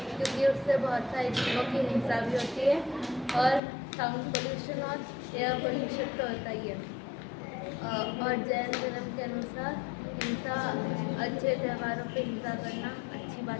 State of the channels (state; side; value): drops out; right; at 3.6 s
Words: क्योंकि उससे बहुत सारी जीवों की हिंसा भी होती है और साउंड पोल्यूशन और एयर पोल्यूशन तो होता ही है। और जैन धर्म के अनुसार हिंसा, अच्छे त्योहारों पे हिंसा करना अच्छी